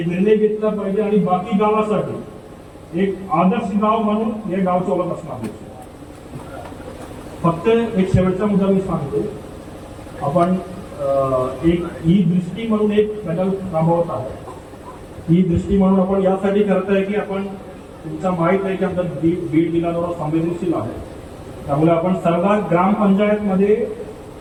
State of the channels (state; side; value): identical; both; correlation 1.00